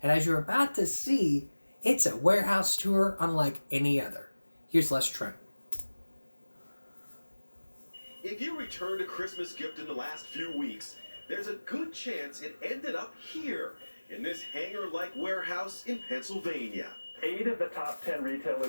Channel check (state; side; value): inverted; both; correlation -1.00